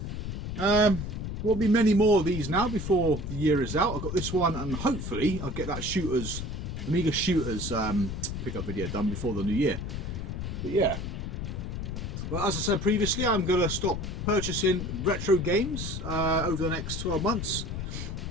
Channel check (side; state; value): left; noise; rumble, 5 dB below the sound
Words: There'll be many more of these now before the year is out. I've got this one and hopefully I'll get that Amiga Shooters pickup video done before the new year. But yeah. Well, as I said previously, I'm going to stop purchasing retro games over the next 12 months.